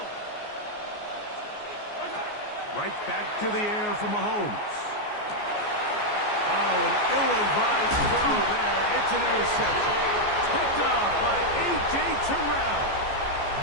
Right back to the air for Mahomes. Oh, an ill-advised throw there. It's an interception. Picked off by A.J. Terrell.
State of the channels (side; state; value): right; late; 14 ms